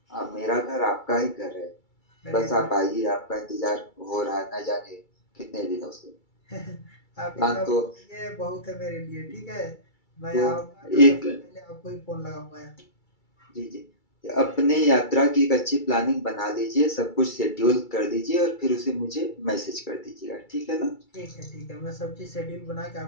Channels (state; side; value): late; right; 2.3 ms